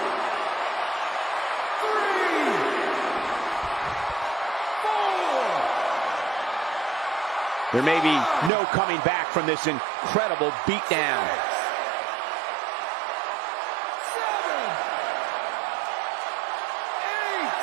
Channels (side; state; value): left; drops out; at 8.5 s